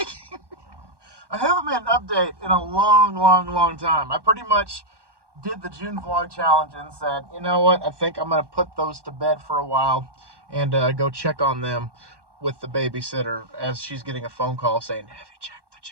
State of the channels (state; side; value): late; left; 1.1 ms